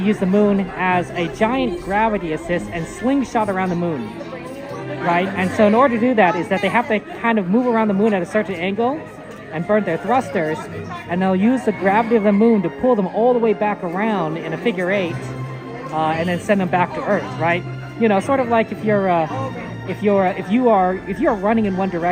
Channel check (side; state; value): both; identical; correlation 1.00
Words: use the moon as a giant gravity assist and slingshot around the moon, right? And so in order to do that is that they have to kind of move around the moon at a certain angle and burn their thrusters, and they'll use the gravity of the moon to pull them all the way back around in a figure eight, and then send them back to Earth, right? You know, sort of like if you are running in one